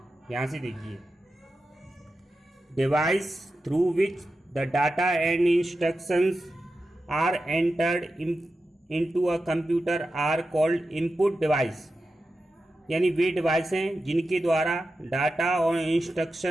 यहाँ से देखिए, device through which the data and instructions are entered into a computer are called input device. यानी वे डिवाइस हैं जिनके द्वारा डाटा और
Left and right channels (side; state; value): both; normal; correlation 0.91